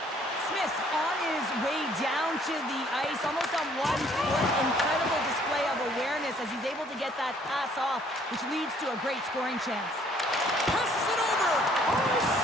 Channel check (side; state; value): both; normal; correlation 0.61